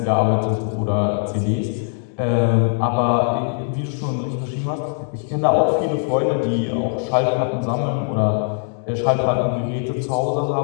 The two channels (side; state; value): right; silent; 62 dB below the other